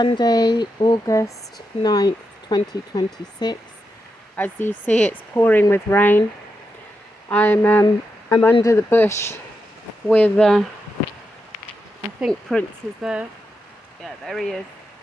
August 9th, 2026. As you see, it's pouring with rain. I'm under the bush with, I think Prince is there. Yeah, there he is.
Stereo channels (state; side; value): normal; both; correlation 0.86